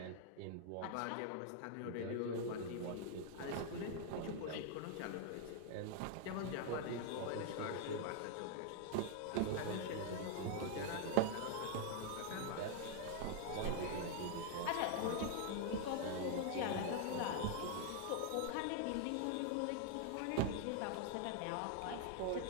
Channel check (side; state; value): both; different; correlation 0.00